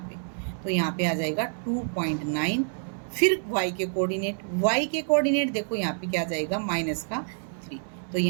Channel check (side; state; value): left; silent; digital silence